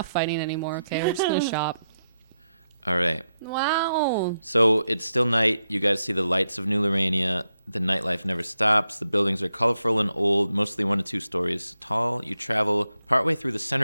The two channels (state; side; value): inverted; both; correlation -0.85